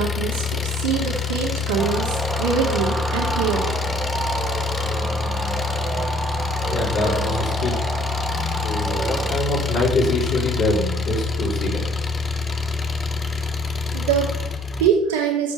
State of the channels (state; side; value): normal; both; correlation 0.57